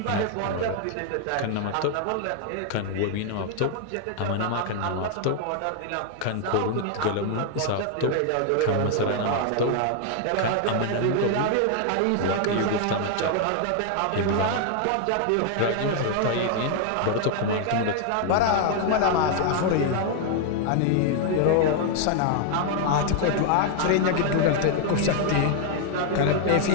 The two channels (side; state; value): both; different; correlation 0.00